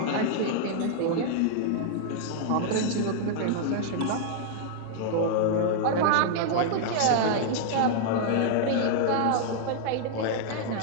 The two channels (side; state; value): both; different; correlation -0.01